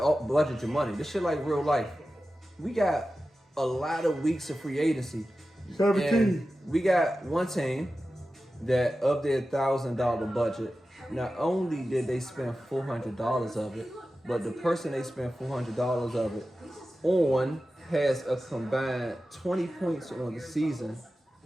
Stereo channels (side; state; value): both; normal; correlation 0.94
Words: to budget your money. This shit like real life. We got a lot of weeks of free agency. 17. And we got one team that up their $1,000 budget. Not only did they spend $400 of it, but the person they spent $400 of it on has a combined 20 points on the season,